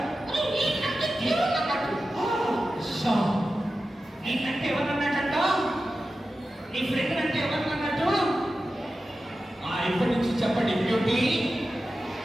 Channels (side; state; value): both; normal; correlation 0.93